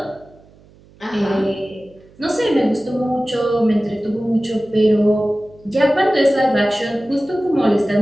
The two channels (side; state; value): right; noise; hum, 27 dB below the sound